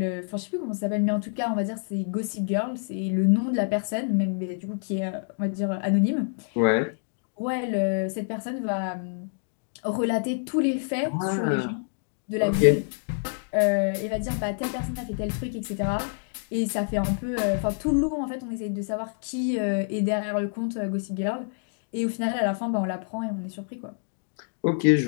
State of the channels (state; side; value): silent; right; digital silence